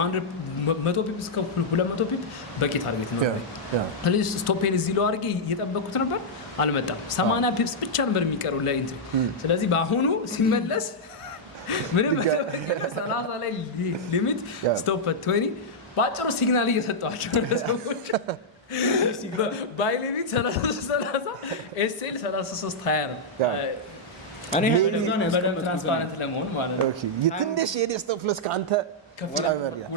100 ፒፕስ ከ200 ፒፕ በቂ ታርጌት ነው። ስለዚህ ስቶፔን እዚህ ለው አድርጌ እየጠበኩት ነበር አልመጣም። 80 ፒፕስ ብቻ ነበር የሚቀረው ለኢንትሪ። ስለዚህ በአሁኑ ሲመለስ ምንም 30 ላይ ሊሚት ስቶፕ 20 ባጭሩ ሲግናል እየሰጠዋቸው ሰዎች ባይ ሊሚት 30 ኤስኤል 33 20 ነው። እኔ በደንብ ትራንስፓረንት ለመሆን ማለት ነው። ኦኬ የትንሽ የዴስክቶፕ ፕለስ ካንተ ወላ በሪያ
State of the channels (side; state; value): both; normal; correlation -0.06